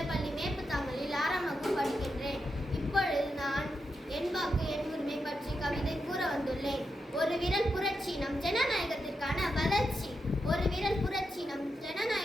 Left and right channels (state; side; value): normal; both; correlation 0.86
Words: மேப்புத்தாமலில் 6ஆம் வகுப்பு படிக்கின்றேன். இப்பொழுது நான் என் வாக்கு என் உரிமை பற்றி கவிதை கூற வந்துள்ளேன். ஒரு விரல் புரட்சி நம் ஜனநாயகத்திற்கான வளர்ச்சி. ஒரு விரல் புரட்சி நம்